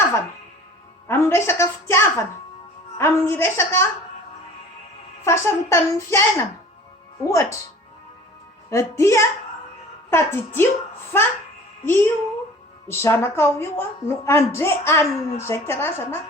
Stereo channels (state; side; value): normal; both; correlation 0.45